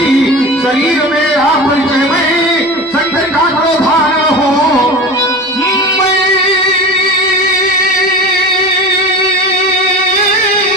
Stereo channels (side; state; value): both; normal; correlation 0.32